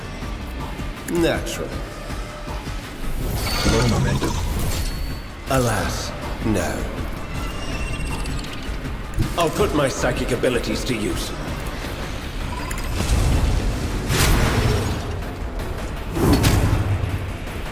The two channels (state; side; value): identical; both; correlation 1.00